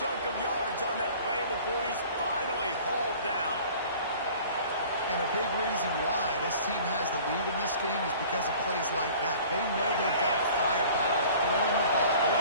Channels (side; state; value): both; inverted; correlation -0.47